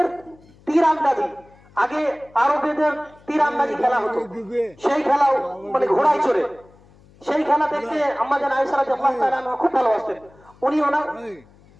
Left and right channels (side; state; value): left; noise; hum, 27 dB below the sound